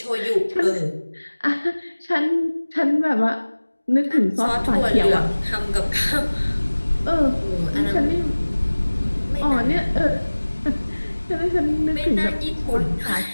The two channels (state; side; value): inverted; both; correlation -1.00